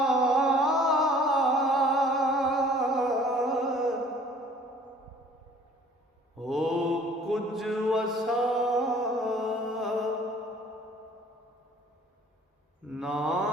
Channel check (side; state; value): both; normal; correlation 0.53